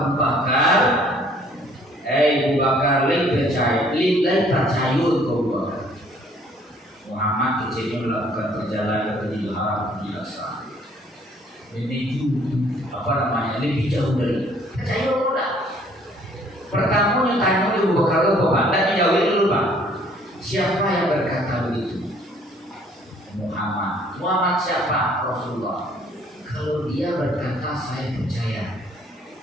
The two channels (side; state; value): both; normal; correlation 0.60